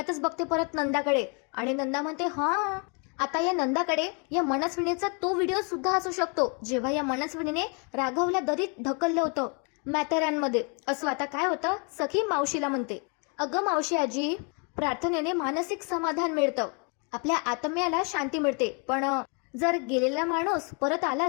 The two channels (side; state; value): right; quieter; 36.0 dB